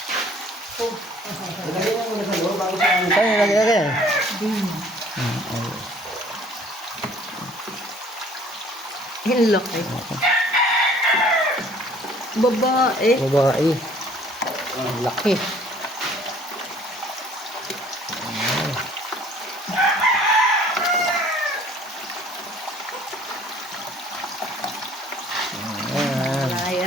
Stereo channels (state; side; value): normal; both; correlation 0.55